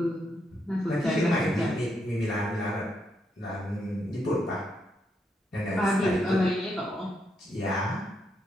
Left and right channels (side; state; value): both; normal; correlation 0.79